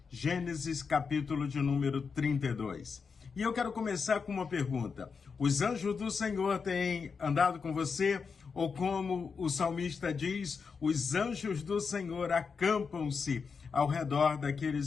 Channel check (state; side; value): quieter; right; 5.5 dB